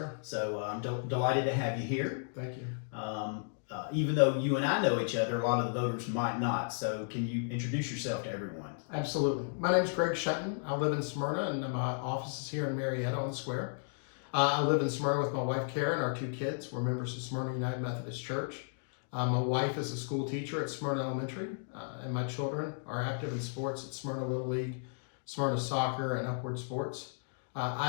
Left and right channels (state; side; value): silent; right; digital silence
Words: So I'm delighted to have you here. Thank you. Even though you and I know each other, a lot of the voters might not. So can you introduce yourself to everyone? Absolutely. My name is Greg Shenton. I live in Smyrna, and my office is here in Marietta on the square. I live in Smyrna with my wife, Karen, and our two kids. We're members of Smyrna United Methodist Church. My wife is a school teacher at Smyrna Elementary, and my children are active in sports at Smyrna Little League, Smyrna Soccer, and Upward Sports.